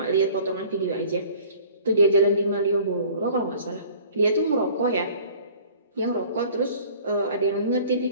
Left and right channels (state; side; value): inverted; both; correlation -0.49